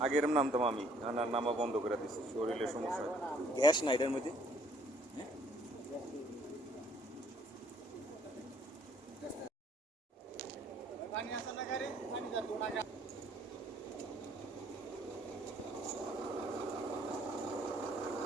আগের নামতাম আমি, নামা বন্ধ করে দিচ্ছি, শরীরের সমস্যা, গ্যাস না এটার মধ্যে।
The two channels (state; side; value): normal; both; correlation 0.62